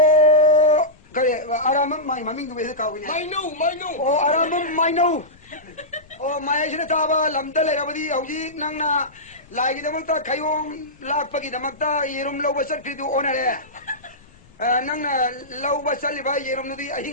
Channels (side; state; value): left; noise; rumble, 27 dB below the sound